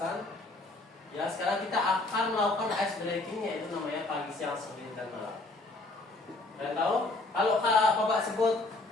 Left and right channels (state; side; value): quieter; right; 3.0 dB